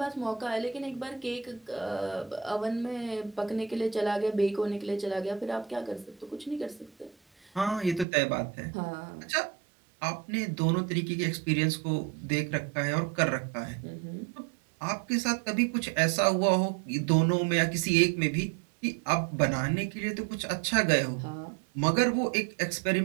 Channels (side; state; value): left; drops out; at 8.1 s